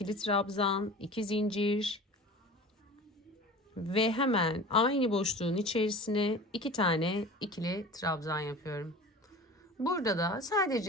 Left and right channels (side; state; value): both; normal; correlation 0.38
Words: trabzan, 2 zincir ve hemen aynı boşluğun içerisine 2 tane ikili trabzan yapıyorum. Burada da